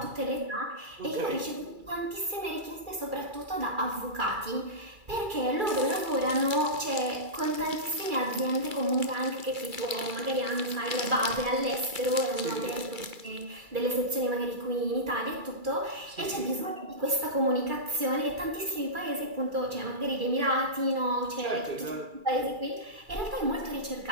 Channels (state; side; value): late; left; 2.3 ms